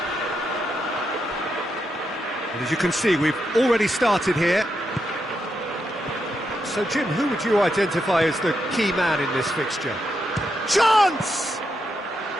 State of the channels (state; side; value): normal; both; correlation 0.83